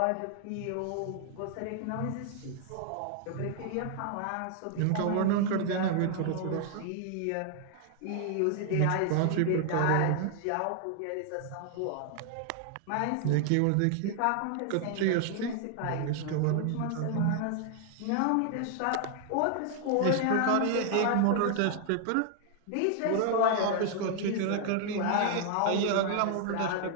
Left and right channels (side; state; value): both; different; correlation 0.00